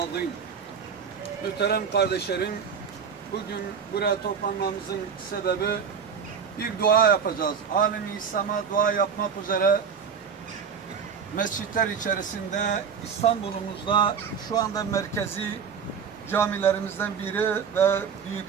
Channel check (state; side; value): quieter; left; 6.7 dB